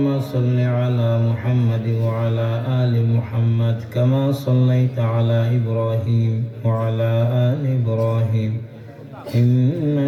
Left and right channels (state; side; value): identical; both; correlation 1.00